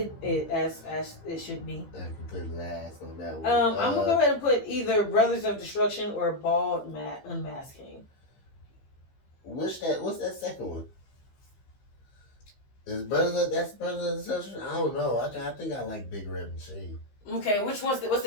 as it should be. I can put last on that one. I'm gonna go ahead and put either Brothers of Destruction or Bald Unmasked Kane. What's that second one? Is that's Brothers of Destruction? I don't know. I think I like Big Red Machine. Okay, what's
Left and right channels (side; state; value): right; late; 15 ms